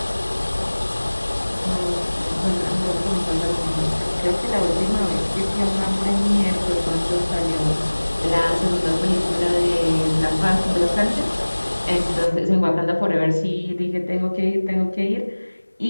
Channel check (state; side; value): inverted; both; correlation -1.00